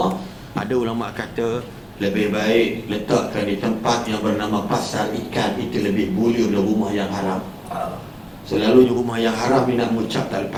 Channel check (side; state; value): both; identical; correlation 1.00